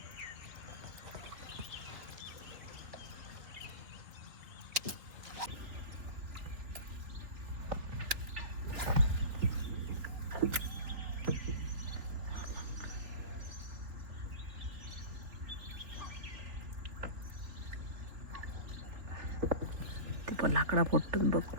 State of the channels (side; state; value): left; late; 3.6 ms